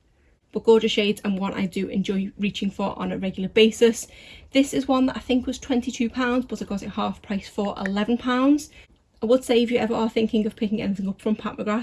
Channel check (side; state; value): both; identical; correlation 1.00